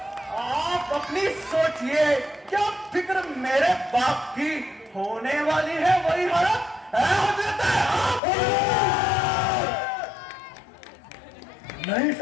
आप अपनी सोचिए, क्या फिक्र मेरे बाप की होने वाली है वही हालत है हो जाता है। नहीं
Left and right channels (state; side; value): drops out; right; at 8.2 s